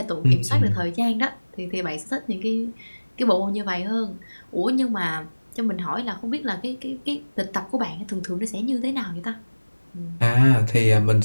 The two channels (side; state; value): both; inverted; correlation -1.00